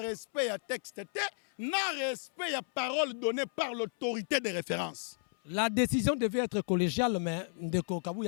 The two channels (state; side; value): silent; right; 56 dB below the other